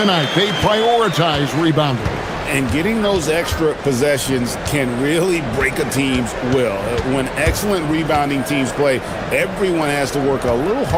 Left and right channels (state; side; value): identical; both; correlation 1.00